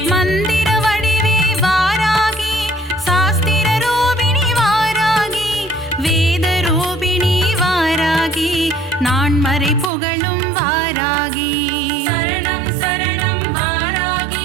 மந்திர வடிவே வாராகி சாஸ்திர ரூபிணி வாராகி வேத ரூபிணி வாராகி நான் மறை புகழும் வாராகி சரணம் சரணம்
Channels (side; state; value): left; drops out; at 9.9 s